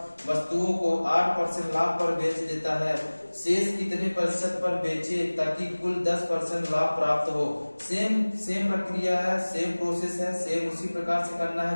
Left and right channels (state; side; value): inverted; both; correlation -1.00